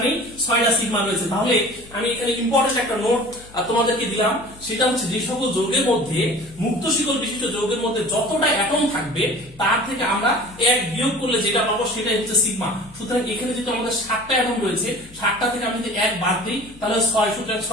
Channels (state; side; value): noise; left; hum, 22 dB below the sound